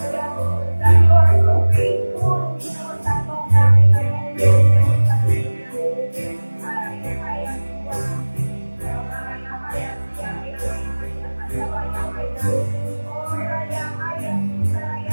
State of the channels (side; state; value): both; inverted; correlation -1.00